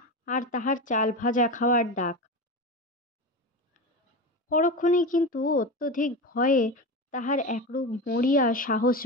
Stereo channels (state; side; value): normal; both; correlation 0.23